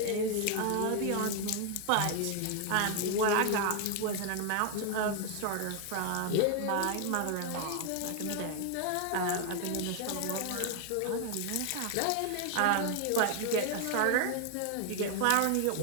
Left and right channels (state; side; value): different; both; correlation 0.00